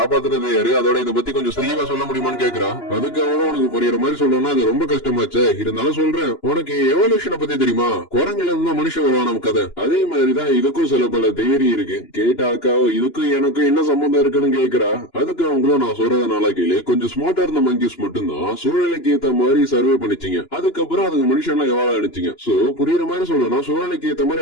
யாரு, அதோட இதை பத்தி கொஞ்சம் தெளிவா சொல்ல முடியுமான்னு கேக்குறா. அதுக்கு அவனும் உனக்கு புரியுற மாதிரி சொல்லணும்னா அது ரொம்ப கஷ்டமாச்சு. இருந்தாலும் சொல்றேன், உனக்கு எவல்யூஷனை பத்தி தெரியுமா? குரங்குல இருந்தா மனுஷன் வருவான் நம்ம கதை. அதே மாதிரிதான் இதுக்கும் சில பல தியரி இருக்கு. கேட்டா அக்காவோ இதுக்கும் எனக்கும் என்ன சம்பந்தம் இருக்குன்னு கேக்குறா. அதுக்கு அவங்களும் நான் சொல்றத நாளா கேளு, கொஞ்சம் ஸ்மார்ட்டா இருந்த மங்கிஸ் மட்டும்தான் சூழ்நிலைக்கு ஏத்த மாதிரி சர்வே பண்ணிச்சிங்க. அதுக்கப்புறம் அதுங்க மனுஷன்லாம் எவ்வளவு அடிச்சிங்க. சோ புரியுற மாதிரி சொல்லணும், சூழ்நிலைக்கு ஏத்த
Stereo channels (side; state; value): right; late; 2.9 ms